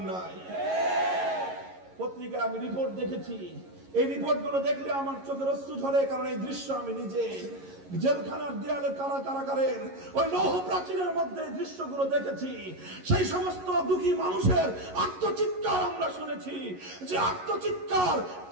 নাই। পত্রিকায় আমি রিপোর্ট দেখেছি, এই রিপোর্টগুলো দেখলে আমার চোখের অশ্রু ঝরে, কারণ এই দৃশ্য আমি নিজে জেলখানার দেয়ালে কারাগারের ওই লৌহ প্রাচীরের মধ্যে দৃশ্যগুলো দেখেছি। সেই সমস্ত দুঃখী মানুষের আত্মচিৎকার আমরা শুনেছি, যে আত্মচিৎকার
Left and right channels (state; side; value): late; left; 11 ms